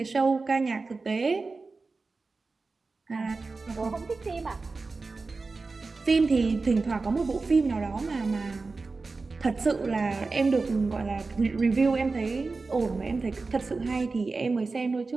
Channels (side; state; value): left; quieter; 3.9 dB